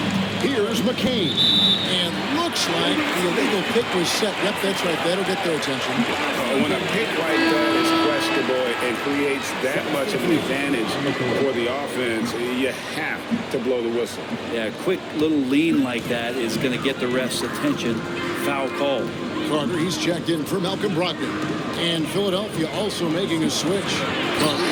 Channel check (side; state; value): both; identical; correlation 1.00